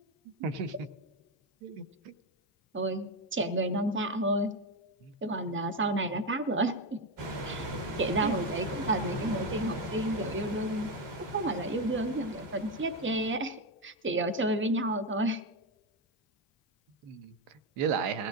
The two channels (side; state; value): both; normal; correlation 0.11